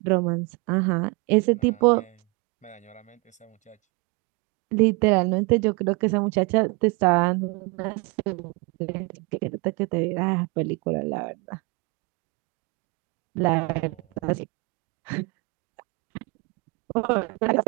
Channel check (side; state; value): left; quieter; 29.5 dB